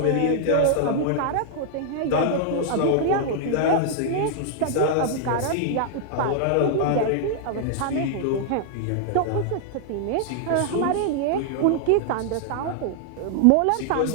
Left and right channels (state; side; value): different; both; correlation -0.01